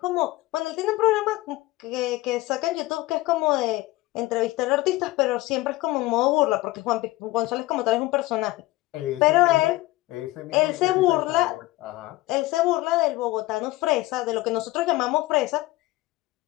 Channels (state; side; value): quieter; right; 19.0 dB